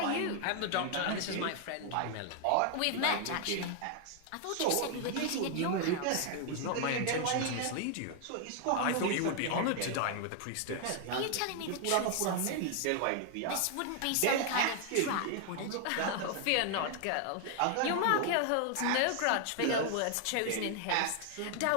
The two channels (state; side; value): different; both; correlation 0.00